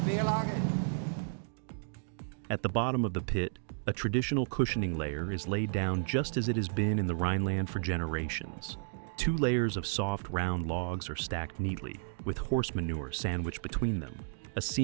Querlage. At the bottom of the pit, a traditional cushioning layer is laid down just as it has been in the Rhineland for generations. 2 layers of soft, round logs are stacked neatly, with horse manure sandwiched between them, a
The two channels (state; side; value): silent; left; digital silence